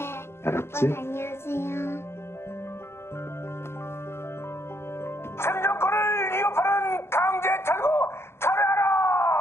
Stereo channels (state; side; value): late; right; 0.12 ms